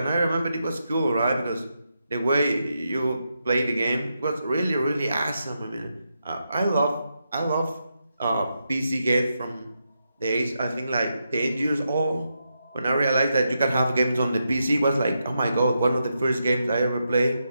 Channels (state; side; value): inverted; both; correlation -0.85